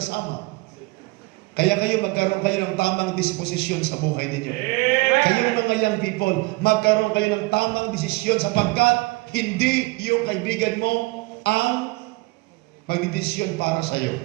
Kaya kayo magkaroon kayo ng tamang disposisyon sa buhay ninyo. Kayong mga young people, magkaroon kayo ng tamang desisyon sapagkat hindi yung kaibigan mo ang magdidesisyon para sa iyo.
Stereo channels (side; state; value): left; quieter; 24.2 dB